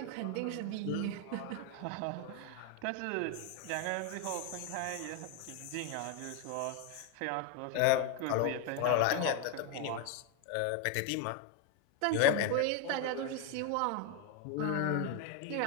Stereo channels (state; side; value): different; both; correlation 0.01